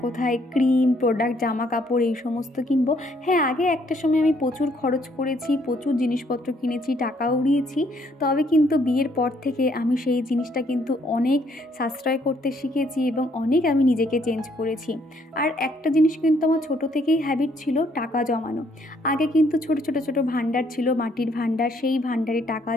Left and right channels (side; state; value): both; normal; correlation 0.67